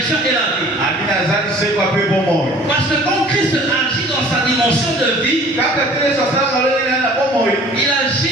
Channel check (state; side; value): normal; both; correlation 0.49